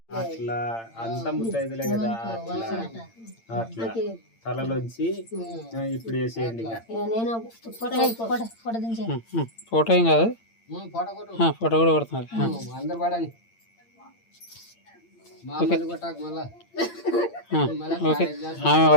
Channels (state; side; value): late; right; 8.8 ms